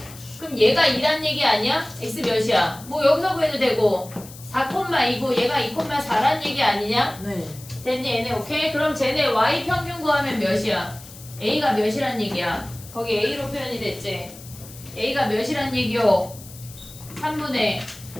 그럼 얘가 2란 얘기 아니야? x 몇이야? 뭐 여기서 구해도 되고 4,2고 얘가 2,4란 얘기 아니냐? 네. 됐니 얘네? 오케이? 그럼 쟤네 y 평균 구하면 몇이야? a가 몇이란 얘기야? 거기 a로 표현이 됐지? a가 몇이란 얘기요? 3분의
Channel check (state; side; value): noise; left; hiss, 18 dB below the sound